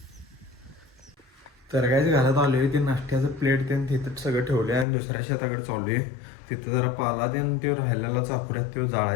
तर काहीच घरात आलो आहे, ते नाश्त्याचं प्लेट ते तिथं सगळं ठेवले आणि दुसऱ्या शेताकडे चालू आहे. तिथं जरा पाला त्यानं ते राहिलेला चापुऱ्यात तो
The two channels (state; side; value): drops out; right; at 4.9 s